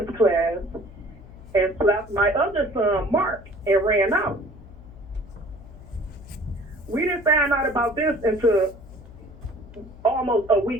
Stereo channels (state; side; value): noise; left; hum, 19 dB below the sound